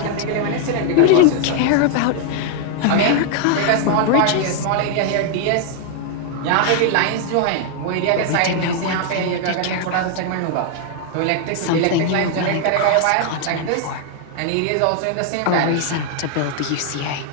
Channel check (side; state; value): both; different; correlation 0.00